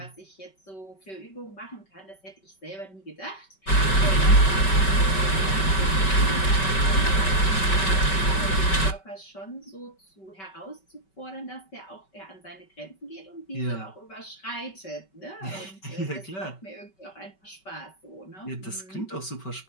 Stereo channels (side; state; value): right; late; 5.2 ms